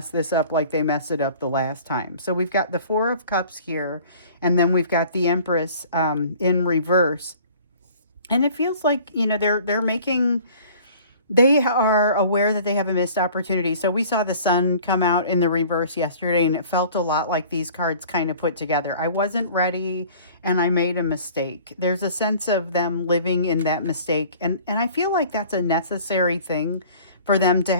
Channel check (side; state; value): both; inverted; correlation -0.49